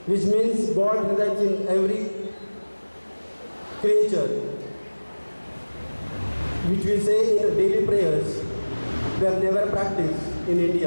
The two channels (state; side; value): inverted; both; correlation -1.00